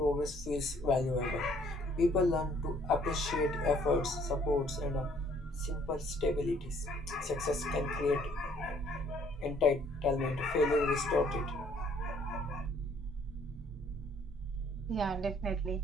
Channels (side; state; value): both; normal; correlation 0.61